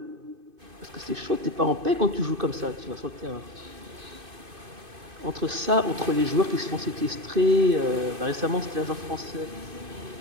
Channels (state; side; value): late; left; 2.5 ms